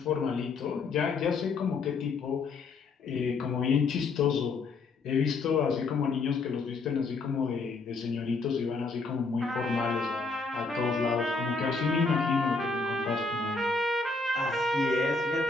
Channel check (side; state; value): right; quieter; 4.0 dB